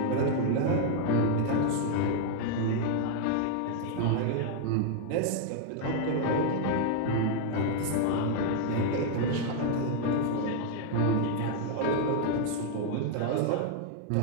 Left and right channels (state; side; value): different; both; correlation 0.00